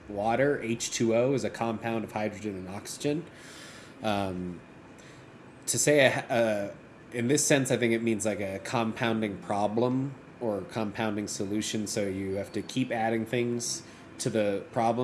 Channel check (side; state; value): both; identical; correlation 1.00